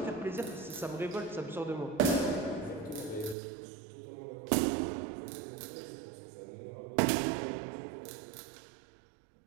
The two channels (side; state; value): left; drops out; at 3.4 s